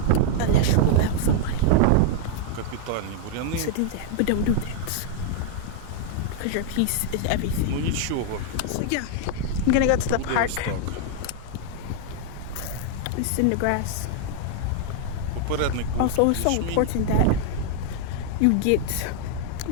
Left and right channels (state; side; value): different; both; correlation 0.00